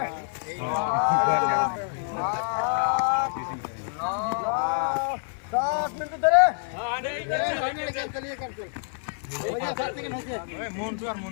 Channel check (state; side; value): silent; right; digital silence